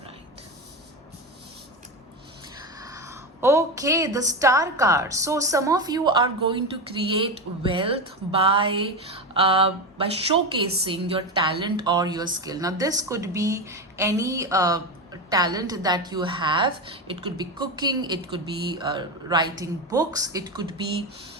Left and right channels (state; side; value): normal; both; correlation 0.17